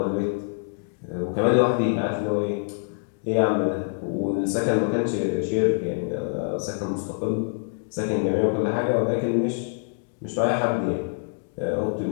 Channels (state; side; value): silent; right; digital silence